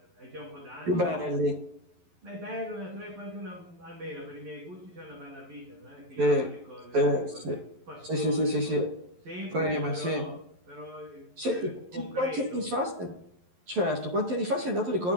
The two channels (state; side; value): late; left; 11 ms